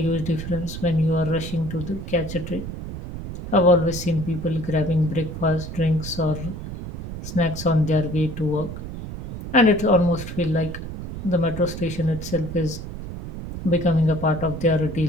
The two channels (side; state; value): right; noise; rumble, 9 dB below the sound